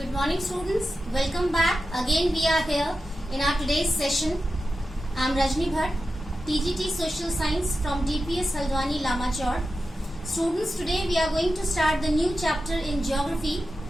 Good morning students, welcome back. Again we are here in our today's session. I am Rajni Bhatt, TGT Social Science from DPS Haldwani Lamachor. Students, today we are going to start the new chapter in geography,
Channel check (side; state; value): both; normal; correlation 0.92